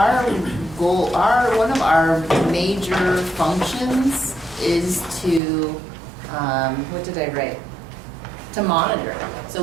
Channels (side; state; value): left; drops out; at 5.4 s